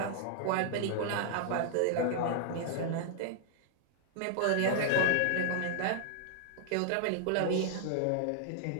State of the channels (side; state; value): both; different; correlation -0.01